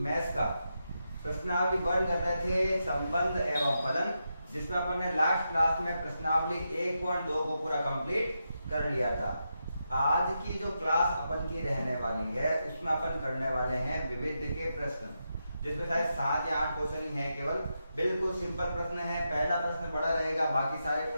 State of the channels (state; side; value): inverted; both; correlation -0.86